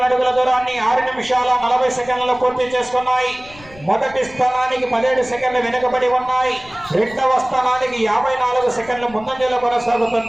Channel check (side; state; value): left; noise; rumble, 21 dB below the sound